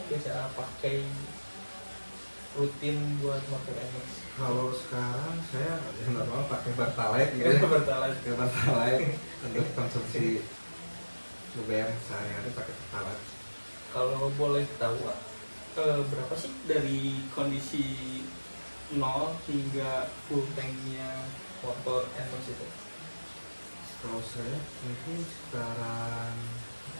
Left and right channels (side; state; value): both; inverted; correlation -1.00